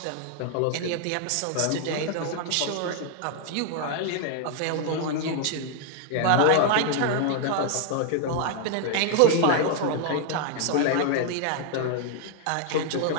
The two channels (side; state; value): both; different; correlation 0.00